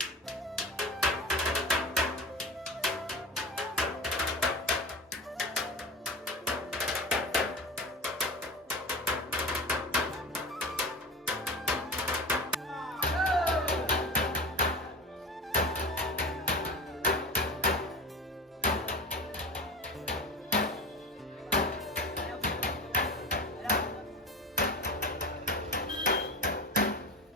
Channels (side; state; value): both; normal; correlation 0.30